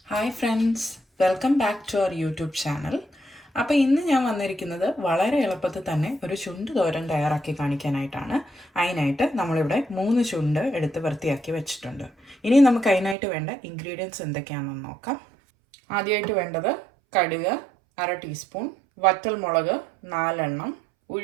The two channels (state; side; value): drops out; left; at 13.2 s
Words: Hi friends, welcome back to our YouTube channel. അപ്പോൾ ഇന്ന് ഞാൻ വന്നിരിക്കുന്നത് വളരെ എളുപ്പത്തിൽ തന്നെ ഒരു ചുണ്ട് തോരൻ തയ്യാറാക്കി കാണിക്കാനായിട്ടാണ്. അതിനായിട്ട് നമ്മളിവിടെ 3 ചുണ്ട് എടുത്ത് വൃത്തിയാക്കി വെച്ചിട്ടുണ്ട്. ഇനി നമുക്ക് അതിനായിട്ട് വേണ്ട ഇൻഗ്രീഡിയൻസ് എന്തൊക്കെയാണെന്ന് നോക്കാം. ആദ്യമായിട്ട് വേണ്ടത് കടുക് 1/2 ടീസ്പൂൺ, വറ്റൽമുളക് 4 എണ്ണം,